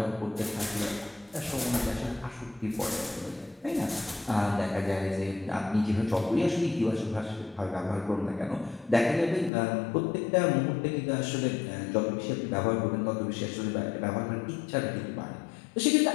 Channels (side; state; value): right; drops out; at 9.5 s